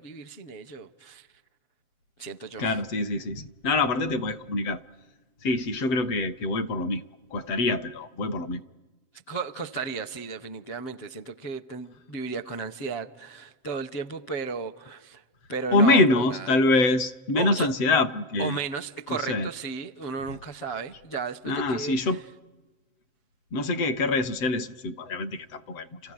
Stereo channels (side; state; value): right; late; 7.7 ms